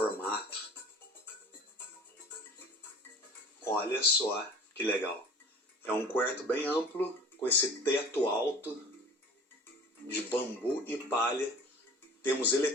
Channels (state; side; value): normal; both; correlation 0.44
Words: Olha só que legal. É um quarto bem amplo, com esse teto alto de bambu e palha. Temos